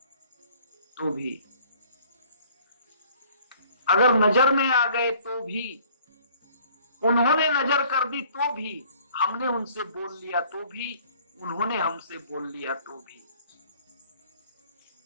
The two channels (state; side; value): inverted; both; correlation -0.56